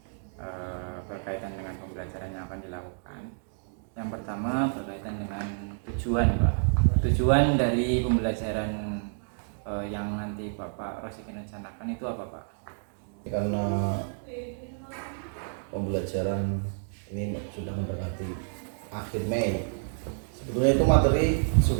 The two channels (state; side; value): silent; left; digital silence